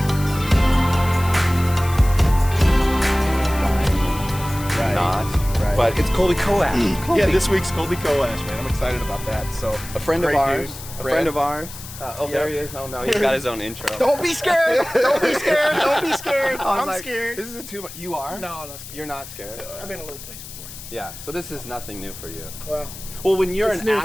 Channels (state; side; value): noise; left; hiss, 14 dB below the sound